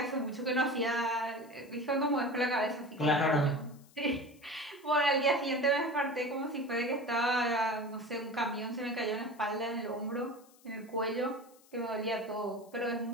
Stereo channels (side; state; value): left; noise; hiss, 27 dB below the sound